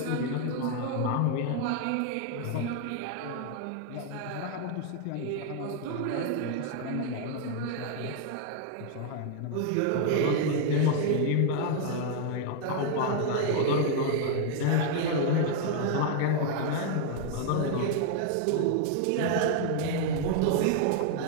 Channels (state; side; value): different; both; correlation 0.00